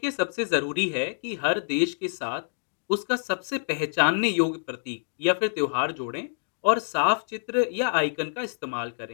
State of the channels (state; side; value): silent; right; digital silence